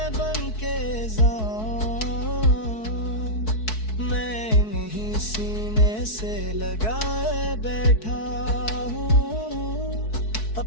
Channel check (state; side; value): late; right; 4.6 ms